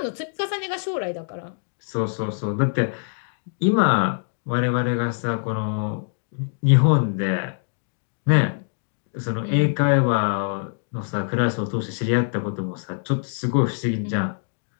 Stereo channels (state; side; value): silent; right; digital silence